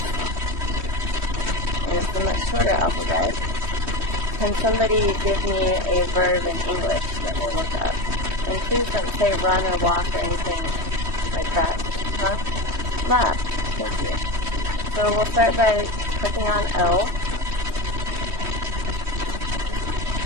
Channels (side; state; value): left; late; 3.1 ms